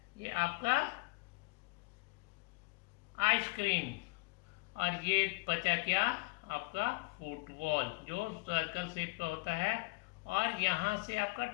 ये आपका आइसक्रीम। और ये बचा क्या? आपका फुटबॉल, जो सर्कल शेप का होता है। और यहाँ से आपका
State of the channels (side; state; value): right; quieter; 27.5 dB